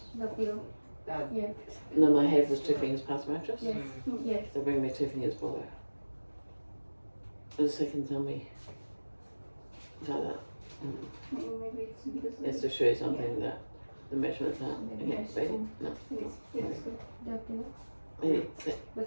The below. Yeah. No, my head was 2 fingers past the mattress? Yes. Yes. So bring me 2 fingers below. For the second tell me. Like that. Maybe it's because It's to show you something that the measurements are Maybe against I baby. should- No. Yes. Good. The below. Maybe sit.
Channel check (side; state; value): both; inverted; correlation -1.00